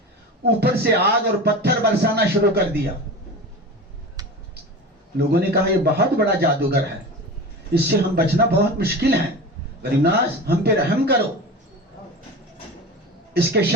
ऊपर से आग और पत्थर बरसाना शुरू कर दिया। लोगों ने कहा यह बहुत बड़ा जादूगर है, इससे हम बचना बहुत मुश्किल है, गरीब नवाज हम पे रहम करो, इसके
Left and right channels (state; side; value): normal; both; correlation 0.30